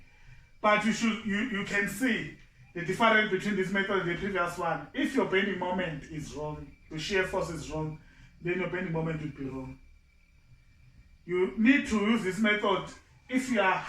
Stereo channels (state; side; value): identical; both; correlation 1.00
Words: But you can see the difference between this method and the previous one. If your bending moment is wrong, your shear force is wrong, then your bending moment will be wrong. You need to use this method if you are